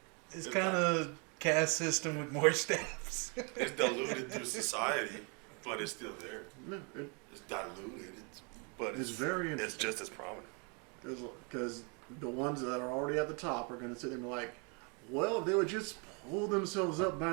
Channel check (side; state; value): left; quieter; 34.2 dB